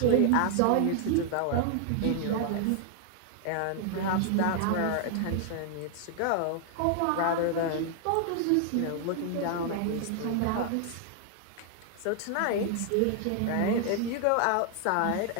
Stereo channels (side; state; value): both; different; correlation 0.00